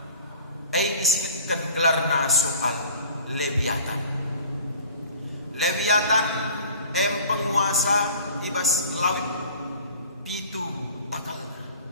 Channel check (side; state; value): both; inverted; correlation -0.46